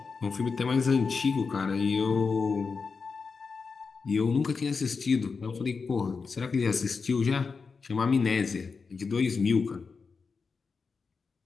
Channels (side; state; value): right; quieter; 4.9 dB